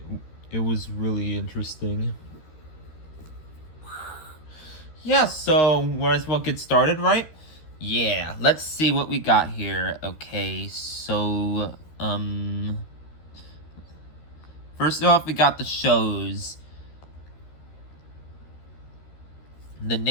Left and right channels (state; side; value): late; right; 13 ms